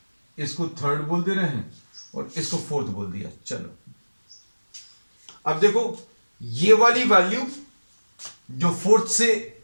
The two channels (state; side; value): inverted; both; correlation -1.00